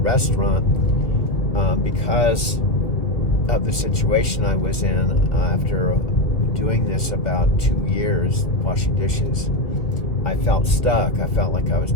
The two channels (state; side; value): late; right; 1.9 ms